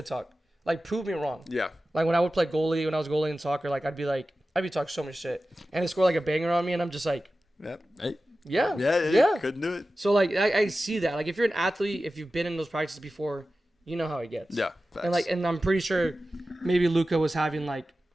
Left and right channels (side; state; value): both; normal; correlation 0.94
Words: talk. Like prove me wrong. Yeah. Like when I would play goalie, when I was goalie in soccer, like I'd be talking so much shit, and they score like a banger on me, and I'm just like, Yep. Hey. Yeah. Couldn't do it. So like I see that. Like if you're an athlete, if you've been in those practices before, you know how it gets. Yeah. Facts. And I'm pretty sure maybe Luka was having like